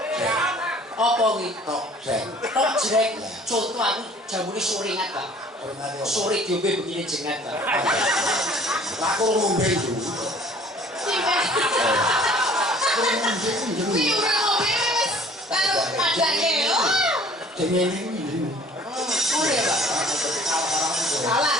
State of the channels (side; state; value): both; normal; correlation 0.52